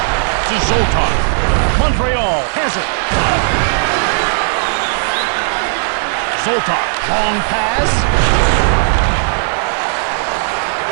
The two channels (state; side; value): silent; left; 70 dB below the other